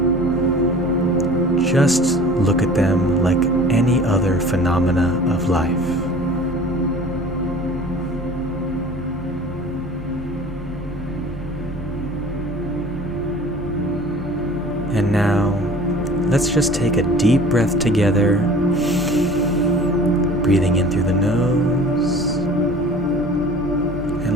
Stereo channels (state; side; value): normal; both; correlation 0.44